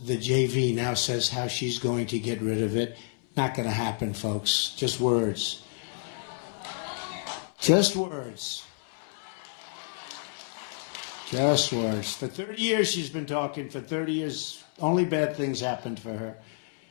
the JV now says how she's going to get rid of it. Not going to happen, folks. Just words. Just words. Just words. For 30 years she's been talking. For 30 years, only bad things happened for her.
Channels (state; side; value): silent; right; 58 dB below the other